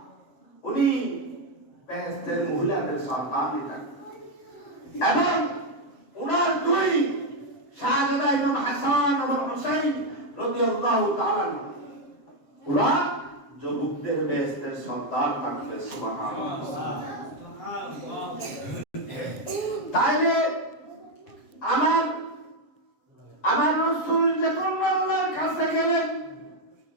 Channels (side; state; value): right; late; 7.3 ms